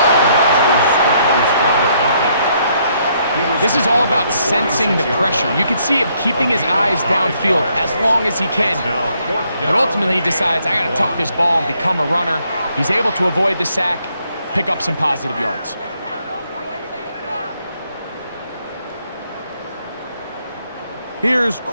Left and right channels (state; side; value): inverted; both; correlation -0.71